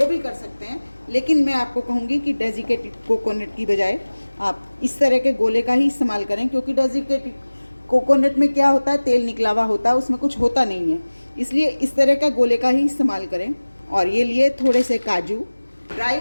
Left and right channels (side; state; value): both; inverted; correlation -1.00